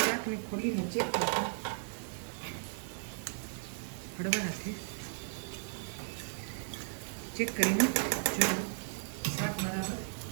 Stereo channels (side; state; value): left; silent; digital silence